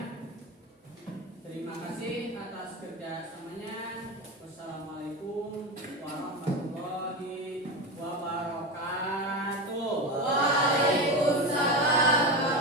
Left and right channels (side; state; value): both; normal; correlation 0.20